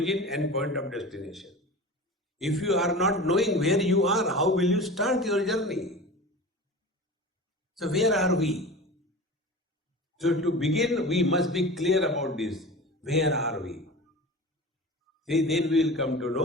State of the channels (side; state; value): both; normal; correlation 0.33